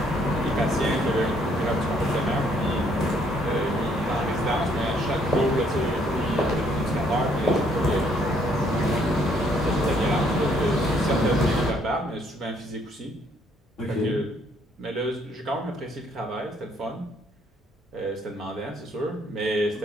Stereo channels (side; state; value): both; normal; correlation 0.67